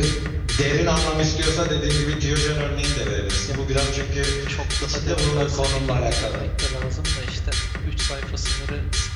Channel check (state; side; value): identical; both; correlation 1.00